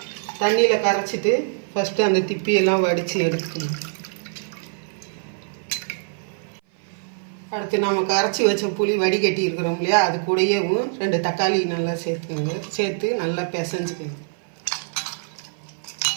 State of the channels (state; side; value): silent; left; 57 dB below the other